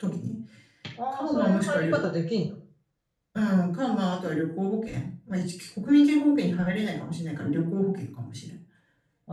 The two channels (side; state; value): both; identical; correlation 1.00